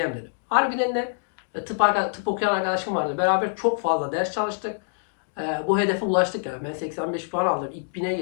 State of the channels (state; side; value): silent; right; digital silence